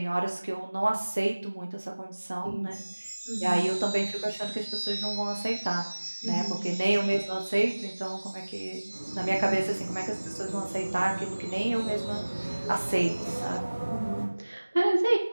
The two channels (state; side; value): inverted; both; correlation -1.00